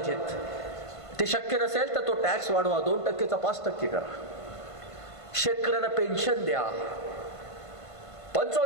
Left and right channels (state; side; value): late; right; 1.5 ms